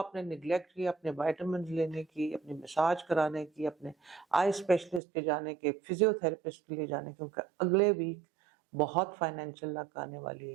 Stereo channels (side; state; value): left; drops out; at 5.0 s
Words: निगलेक्ट किया, अपने वाइटामिन लेने की, अपनी मसाज कराने की, अपने आई स्पेशलिस्ट के जाने के, फिजियोथेरेपिस्ट के लिए जाने की, क्योंकि अगले वीक बहुत फाइनेंशियल लक आने वाली